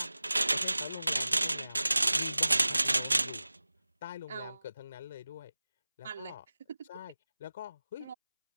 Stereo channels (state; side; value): inverted; both; correlation -0.97